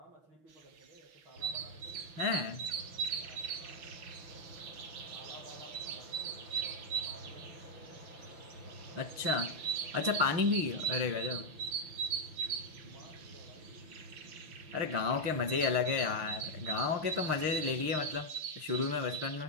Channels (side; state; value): left; late; 6.5 ms